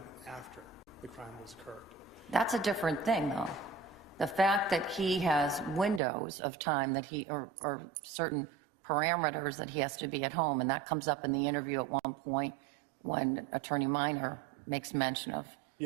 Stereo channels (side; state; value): left; drops out; at 6.0 s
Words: after the crime was occurred. That's a different thing, though. The fact that he has windows of time that he, or certain parameters that he has to be at home, and that comes up in the interview at one point when Attorney Minor makes mention of